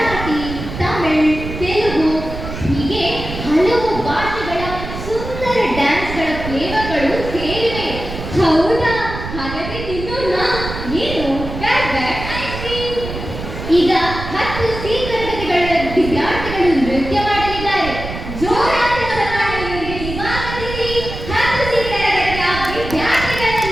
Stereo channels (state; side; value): noise; right; rumble, 8 dB below the sound